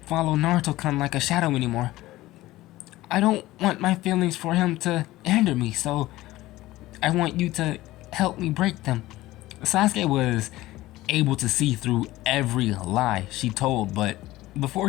follow Naruto-kun like a shadow anymore. I don't want my feelings for him to hinder me, so I want you to help me break them. Sasuke was able to see through every lie she told, but before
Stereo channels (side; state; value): right; quieter; 17.1 dB